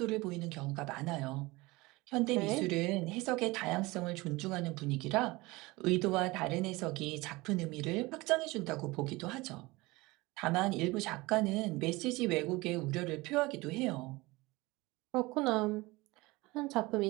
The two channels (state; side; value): quieter; left; 22.1 dB